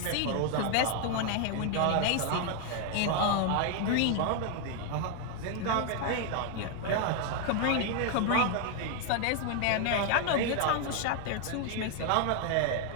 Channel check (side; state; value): both; different; correlation 0.01